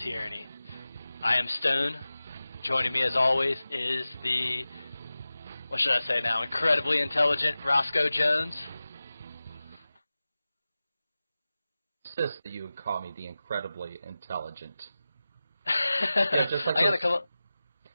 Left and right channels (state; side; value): inverted; both; correlation -0.96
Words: I am Stone. Joining me as always is the, what should I say now, incredibly intelligent Roscoe Jones. Insist that you would call me the incredibly intelligent.